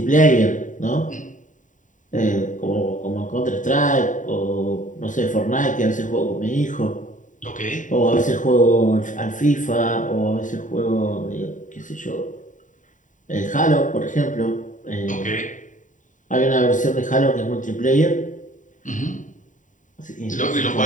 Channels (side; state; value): right; late; 0.37 ms